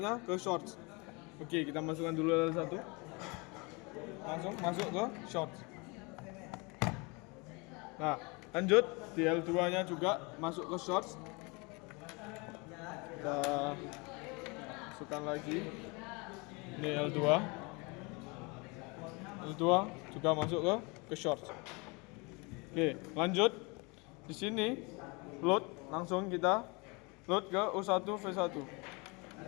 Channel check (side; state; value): right; quieter; 28.6 dB